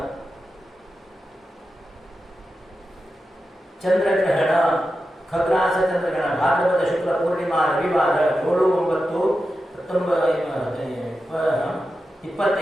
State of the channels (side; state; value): both; normal; correlation 0.91